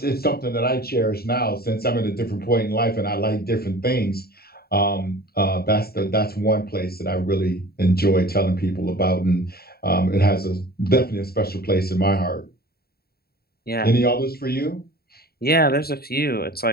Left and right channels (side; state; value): right; late; 0.45 ms